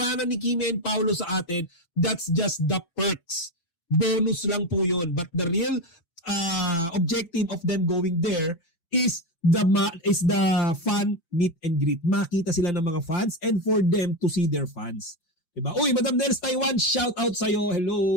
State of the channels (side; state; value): right; late; 5.9 ms